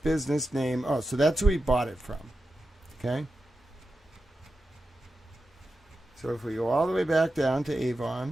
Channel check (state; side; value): normal; both; correlation 0.90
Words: name. Oh, so that's who we bought it from, okay? So if we go all the way back down to